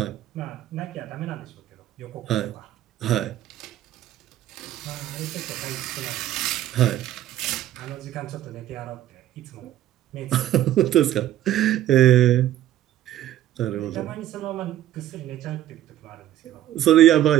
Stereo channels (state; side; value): quieter; left; 12.9 dB